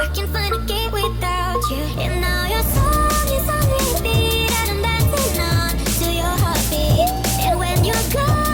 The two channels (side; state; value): both; identical; correlation 1.00